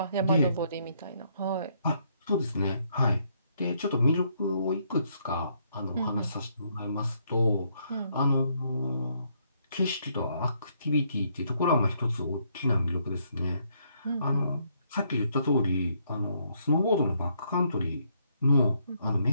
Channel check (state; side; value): inverted; both; correlation -0.72